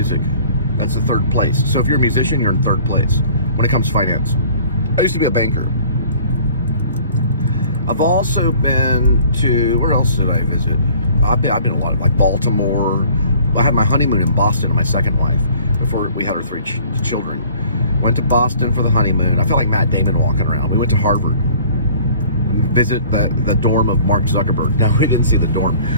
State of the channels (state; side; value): inverted; both; correlation -0.51